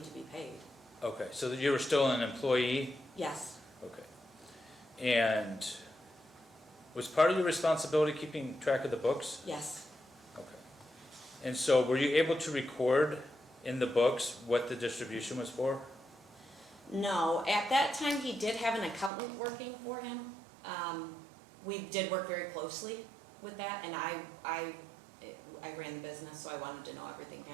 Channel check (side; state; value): left; drops out; at 19.1 s